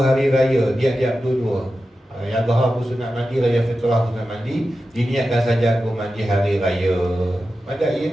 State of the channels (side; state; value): both; normal; correlation 0.92